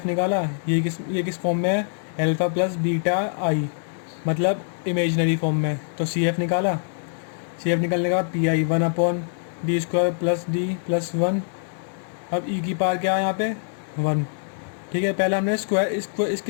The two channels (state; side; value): silent; right; digital silence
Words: निकाला। ये किस फॉर्म में है, अल्फ़ा प्लस बीटा आई, मतलब इमेजनरी फॉर्म में। तो सी एफ निकाला। सी एफ निकालने के बाद पी आई 1/d² + d + 1। अब ई की पावर क्या है यहाँ पे 1। ठीक है, पहले हमने